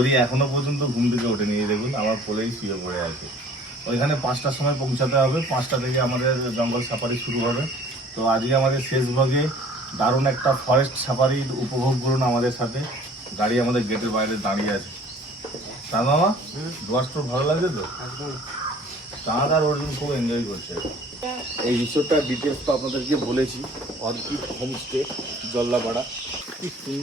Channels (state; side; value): normal; both; correlation 0.51